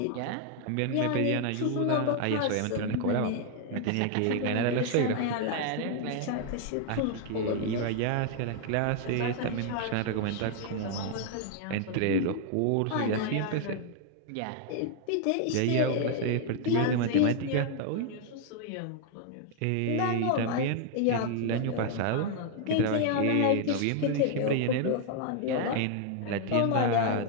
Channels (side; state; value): both; different; correlation 0.00